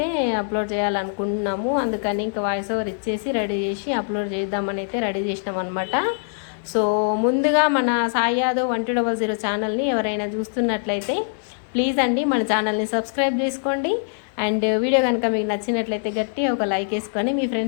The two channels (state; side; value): silent; right; digital silence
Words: అప్లోడ్ చేయాలనుకుంటున్నాము, అందుకని ఇంకా వాయిస్ ఓవర్ ఇచ్చేసి రెడీ చేసి అప్లోడ్ చేద్దామని అయితే రెడీ చేసినాం అనమాట. సో ముందుగా మన సాయి యాదవ్ 1200 ఛానల్ని ఎవరైనా చూస్తున్నట్లయితే ప్లీజ్ అండి మన ఛానల్ని సబ్స్క్రైబ్ చేసుకోండి. అండ్ వీడియో కనుక మీకు నచ్చినట్లయితే గట్టి ఒక లైక్ వేసుకొని మీ